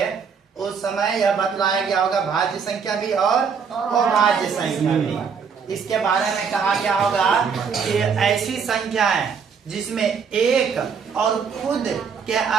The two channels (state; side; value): quieter; left; 6.2 dB